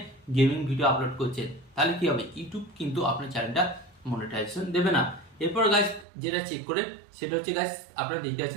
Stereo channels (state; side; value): drops out; left; at 6.1 s